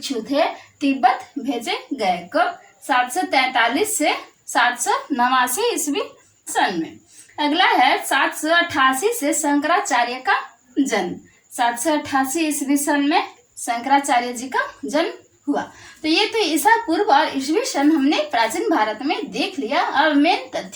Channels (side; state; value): both; identical; correlation 1.00